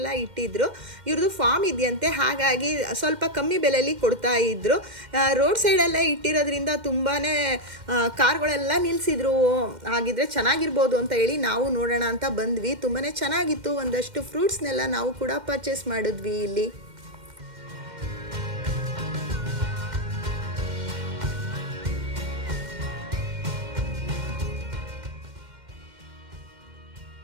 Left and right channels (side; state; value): left; late; 2.1 ms